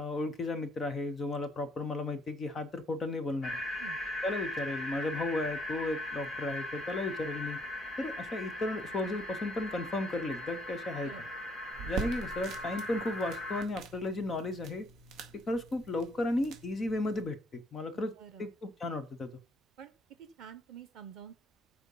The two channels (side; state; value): both; normal; correlation 0.67